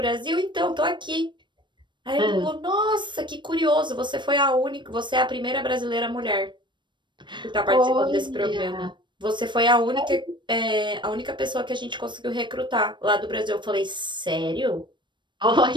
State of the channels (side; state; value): left; late; 0.22 ms